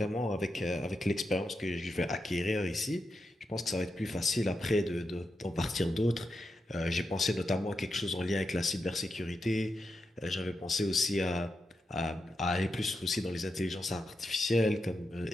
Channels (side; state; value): both; normal; correlation 0.87